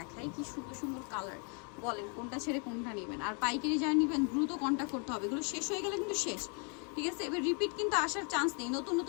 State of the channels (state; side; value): quieter; right; 38.0 dB